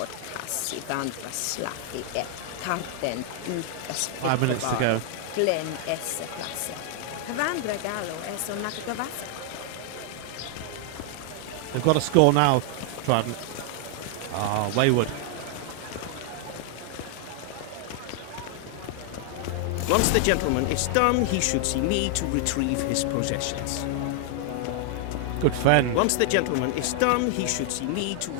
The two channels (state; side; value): different; both; correlation 0.00